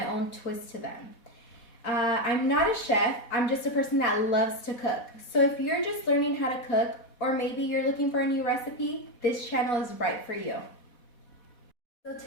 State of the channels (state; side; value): late; right; 4.2 ms